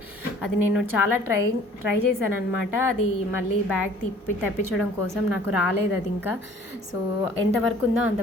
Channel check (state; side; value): normal; both; correlation 0.52